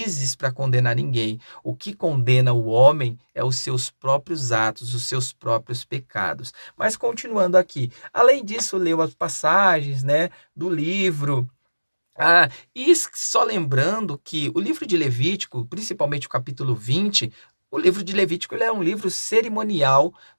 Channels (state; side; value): inverted; both; correlation -1.00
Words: para condenar ninguém. O que condena o homem é os seus próprios atos, os seus próprios pecados. Mas continuando aqui, além disso, leu as passagens, né, do livro. Só lembrando que o livro de Levítico, principalmente o capítulo 20, o livro de Levítico ele é um livro cerimonial